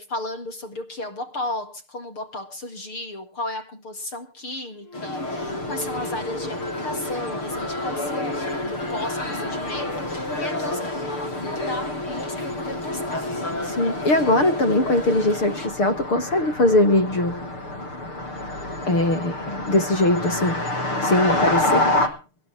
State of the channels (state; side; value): late; right; 6.7 ms